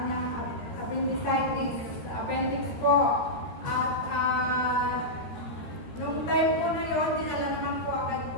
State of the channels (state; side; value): late; right; 13 ms